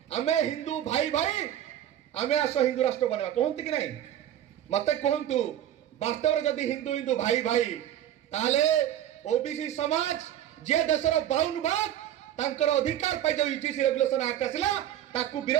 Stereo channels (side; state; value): left; quieter; 11.5 dB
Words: हमें हिंदू भाई भाई हमें आसो हिंदू राष्ट्र बनेवा कहंती कि नहीं मते कहंतु वास्तव में जदि हिंदू हिंदू भाई भाई ताले ओबीसी समाज जे देशर 52 भाग तांकर अधिकार पाई जो यूजीसी रेगुलेशन एक्ट आसिला ताकू